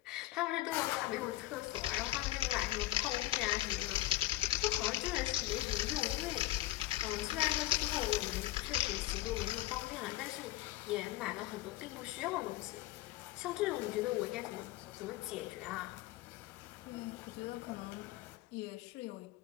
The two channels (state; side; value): quieter; right; 16.2 dB